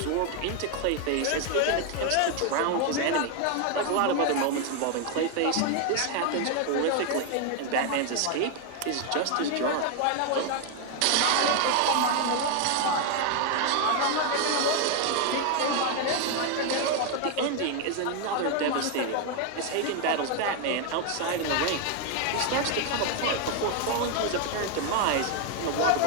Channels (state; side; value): different; both; correlation 0.01